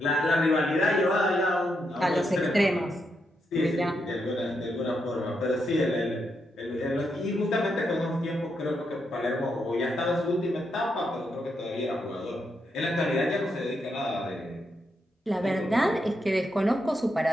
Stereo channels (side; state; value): both; normal; correlation 0.81